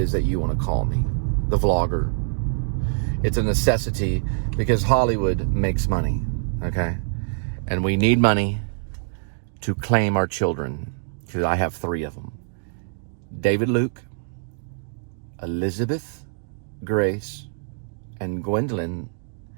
that you want to call me, the vlogger. It's a necessity because Hollywood makes money, okay? And we need money to claim our children, because I have 3 of them. David Luke, Elizabeth Grace, and Gwendolyn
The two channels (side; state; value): left; silent; digital silence